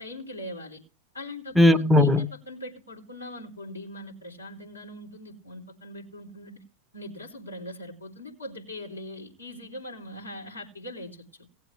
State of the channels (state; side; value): normal; both; correlation 0.61